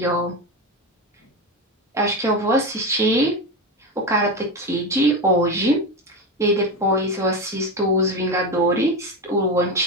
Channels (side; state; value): both; normal; correlation 0.17